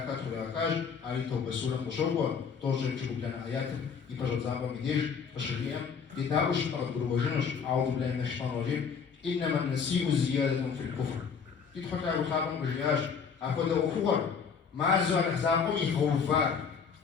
تراكاج علي تو بسورة مشوبة توجه تشوف لنا آيات يبجو زابا مديش بشريم يداوش مرض بروجنوش أعوذ بالله من الشيطان الرجيم إنما النسيء زيادة في الكفر يدخل لاو خابم بجياش أقول أخوة ما زال حسابهم يخوفار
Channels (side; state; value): right; quieter; 6.2 dB